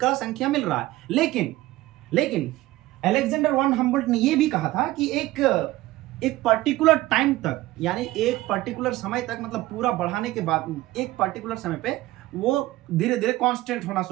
संख्या मिल रहा है। लेकिन अलेक्जेंडर वन हम्बोल्ट ने यह भी कहा था कि एक पर्टिकुलर टाइम तक, यानी एक पर्टिकुलर समय तक, मतलब पूरा बढ़ाने के बाद एक पर्टिकुलर समय पे वो धीरे धीरे कांस्टेंट होना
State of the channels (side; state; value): left; quieter; 17.5 dB